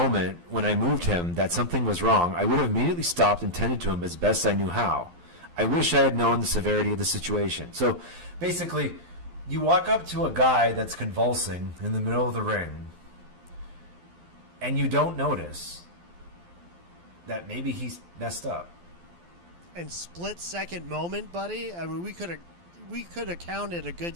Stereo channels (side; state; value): left; late; 12 ms